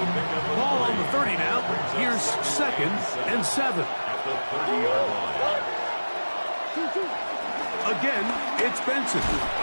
Ball on the 30 now. Here's 2nd and 7. Again, it's Benson.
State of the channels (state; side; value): inverted; both; correlation -1.00